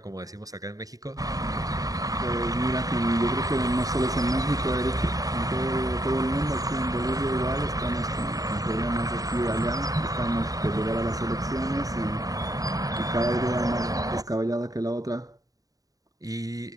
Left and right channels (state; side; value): late; left; 0.18 ms